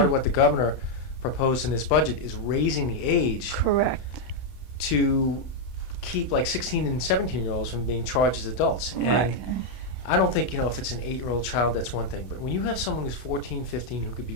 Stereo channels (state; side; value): late; right; 31 ms